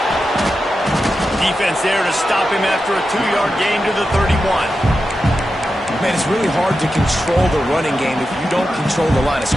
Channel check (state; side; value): normal; both; correlation 0.90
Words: Defense there to stop him after a 2-yard gain to the 31. Man, it's really hard to control the running game if you don't control the line of